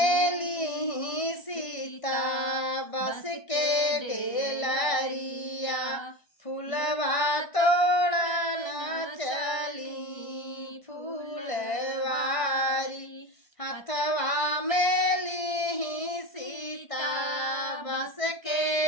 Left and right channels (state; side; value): late; right; 1.5 ms